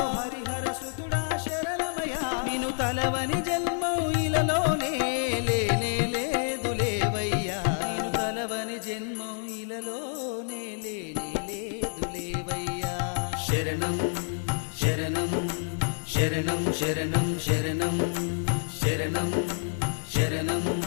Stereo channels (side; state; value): right; silent; digital silence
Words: హరిహర సుతుడా శరణమయ్యా నిన్ను తలవని జన్మం ఇలలోనే లేనే లేదు లేవయ్యా నిన్ను తలవని జన్మం ఇలలోనే లేనే లేదు లేవయ్యా శరణం శరణం శరణం శరణం శరణం శరణం శరణం